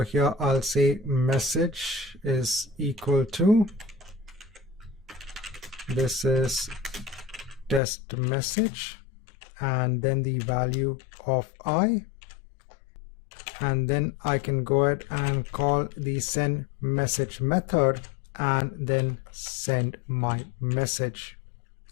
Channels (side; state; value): right; drops out; at 7.8 s